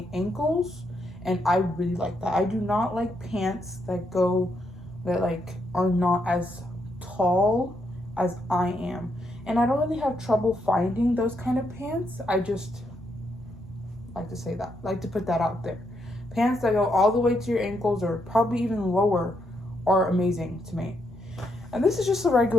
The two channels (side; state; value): both; normal; correlation 0.78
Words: ankles, and I really like that. I do not like pants that are not as tall as I am. And I don't really have trouble finding those kind of pants. I just like to say that, like to put that out there. Pants that go all the way to your ankles or probably even lower are amazing to me. And this is just a